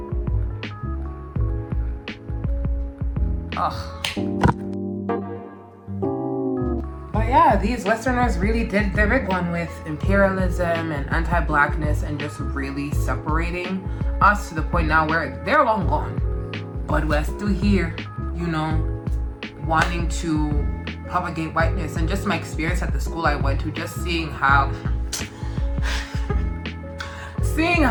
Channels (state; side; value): identical; both; correlation 1.00